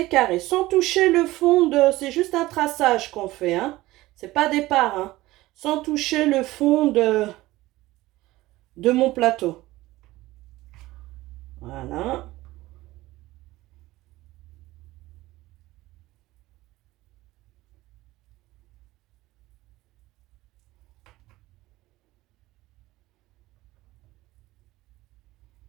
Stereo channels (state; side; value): quieter; left; 18.0 dB